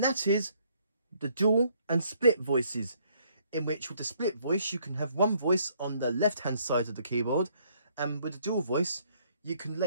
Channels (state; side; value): inverted; both; correlation -0.67